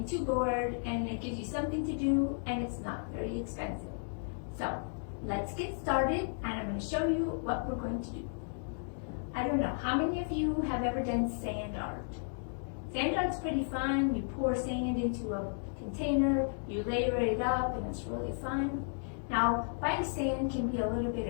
too bored and it gives you something to do and it's not very expensive. So, let's get started and I'm going to show you what we're going to do. I don't know, how many of you have ever done sand art? Sand art's pretty fun. You pour sand into a container, you layer it up, and it's really fun. Now, buying sand can be a little bit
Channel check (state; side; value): silent; right; digital silence